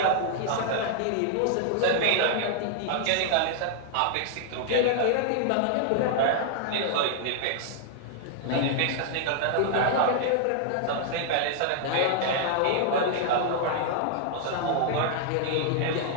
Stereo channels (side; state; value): both; different; correlation -0.01